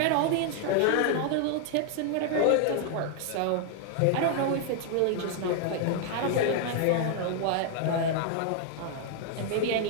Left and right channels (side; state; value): both; different; correlation 0.00